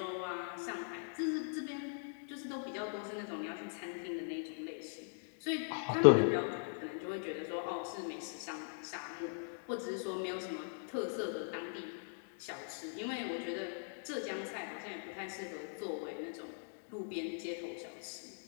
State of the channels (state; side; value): silent; right; digital silence